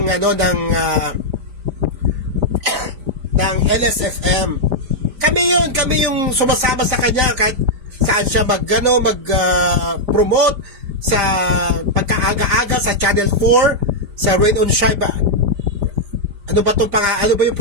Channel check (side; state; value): left; late; 5.0 ms